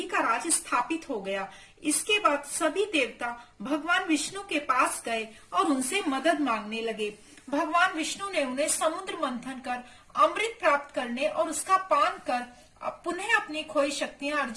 का राज स्थापित हो गया। इसके बाद सभी देवता भगवान विष्णु के पास गए और उनसे मदद मांगने लगे। भगवान विष्णु ने उन्हें समुद्र मंथन कर अमृत प्राप्त करने और उसका पान कर पुनः अपनी खोई शक्तियां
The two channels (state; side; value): identical; both; correlation 1.00